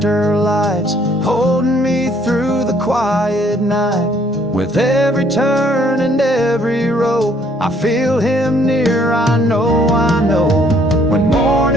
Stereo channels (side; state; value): both; normal; correlation 0.64